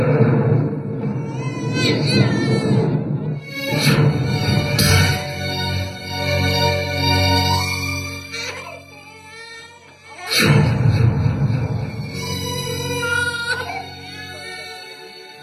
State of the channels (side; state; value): both; identical; correlation 1.00